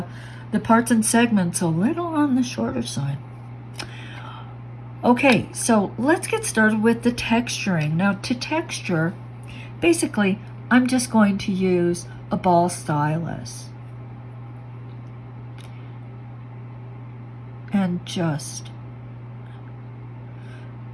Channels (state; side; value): identical; both; correlation 1.00